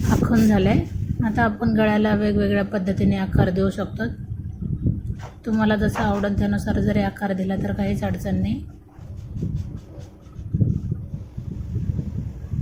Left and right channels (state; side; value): identical; both; correlation 1.00